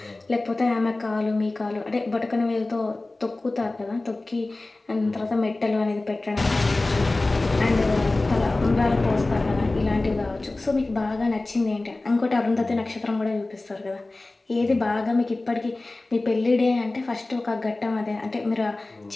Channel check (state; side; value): quieter; right; 3.0 dB